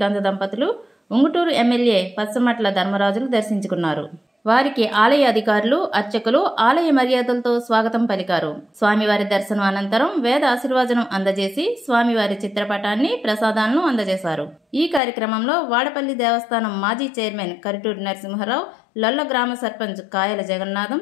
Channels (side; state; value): right; drops out; at 15.0 s